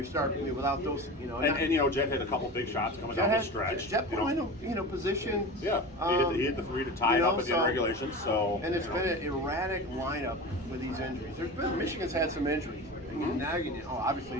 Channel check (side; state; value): both; normal; correlation 0.30